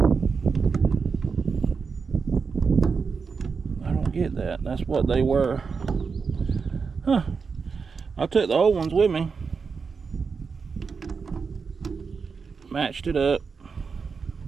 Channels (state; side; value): quieter; left; 5.3 dB